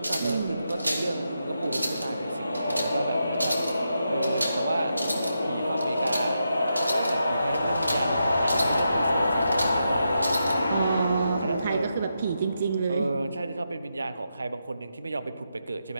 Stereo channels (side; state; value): both; inverted; correlation -0.85